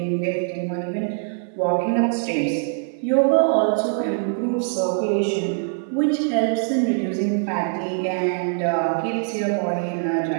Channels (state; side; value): silent; left; 61 dB below the other